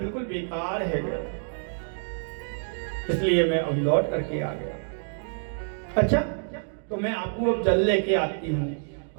बेकार है, इसलिए मैं अब लौट करके आ गया। अच्छा तो मैं आपको अब जल लेके आती हूँ।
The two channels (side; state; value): left; silent; digital silence